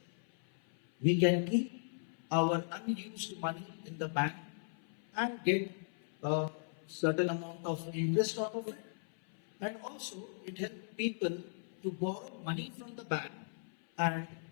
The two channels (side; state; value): right; silent; 53 dB below the other